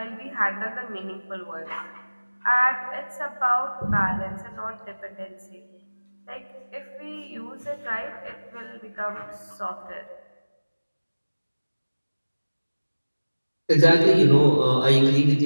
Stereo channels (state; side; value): inverted; both; correlation -1.00